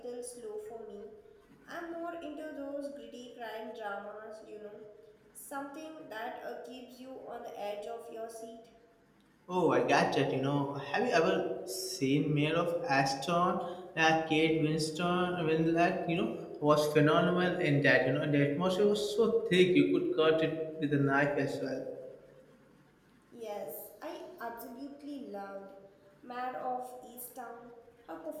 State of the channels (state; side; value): identical; both; correlation 1.00